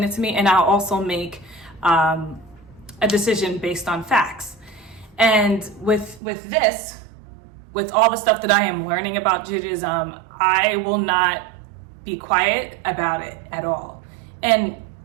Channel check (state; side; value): drops out; left; at 6.2 s